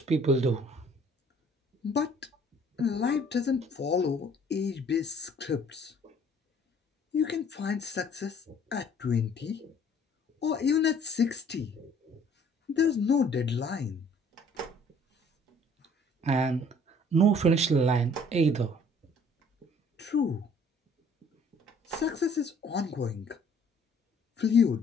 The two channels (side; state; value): both; normal; correlation 0.57